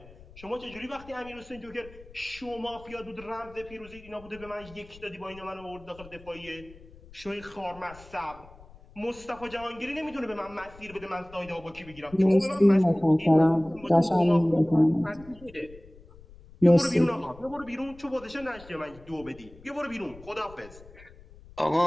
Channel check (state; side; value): noise; left; rumble, 21 dB below the sound